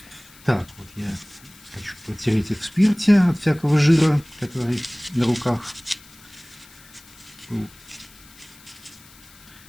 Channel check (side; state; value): left; noise; hiss, 23 dB below the sound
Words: Так, вот я хочу протереть их в спирте от всякого жира, который на руках был,